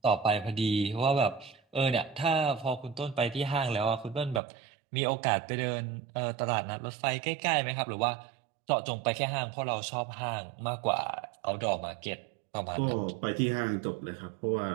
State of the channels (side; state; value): left; drops out; at 4.4 s